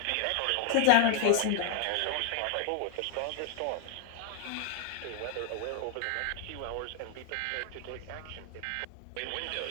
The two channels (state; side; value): different; both; correlation 0.00